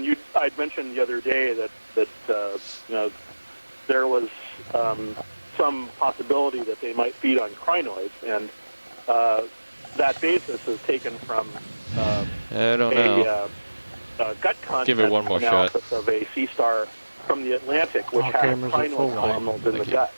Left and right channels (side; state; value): both; inverted; correlation -1.00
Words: I'd mentioned the other day that you know, there was some possibility that they might feed on crinoids, and that basis is taken from a gut content analysis of a sea star from the Atlantic, which has crinoid columnals in the gut.